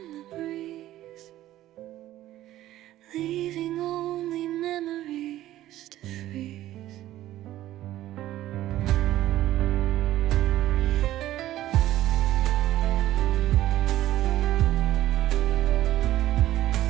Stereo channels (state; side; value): quieter; left; 14.2 dB